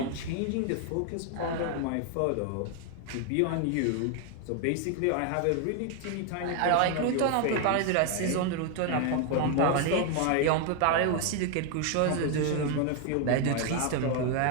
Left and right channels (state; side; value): different; both; correlation 0.01